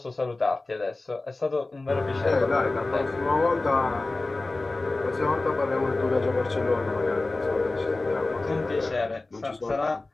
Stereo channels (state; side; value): quieter; right; 3.1 dB